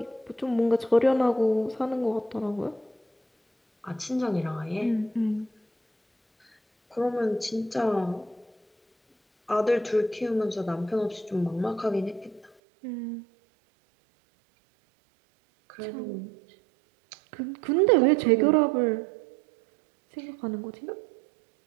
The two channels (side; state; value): left; drops out; at 12.5 s